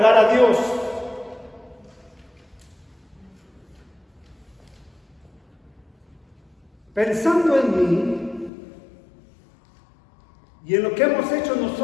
a Dios. Pensando en mí y en lo que hemos hecho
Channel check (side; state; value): right; drops out; at 8.5 s